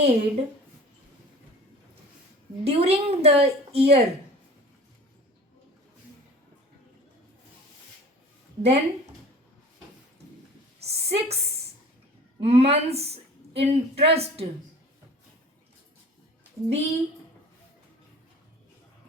during the year, then 6 months interest be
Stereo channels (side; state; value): both; normal; correlation 0.43